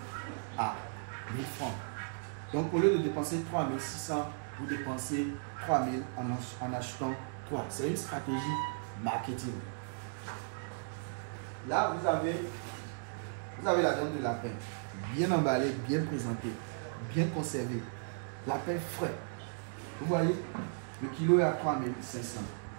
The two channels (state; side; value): silent; left; digital silence